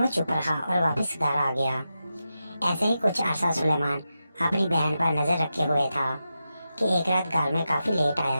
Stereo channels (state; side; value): inverted; both; correlation -0.90